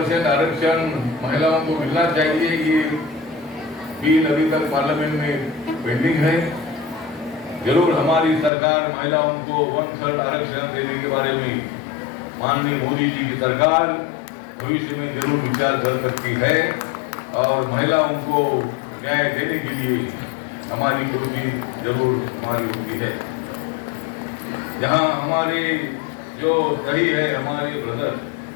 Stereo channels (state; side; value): drops out; right; at 8.5 s